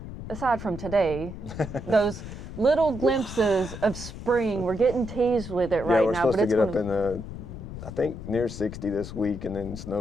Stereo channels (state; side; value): noise; left; rumble, 10 dB below the sound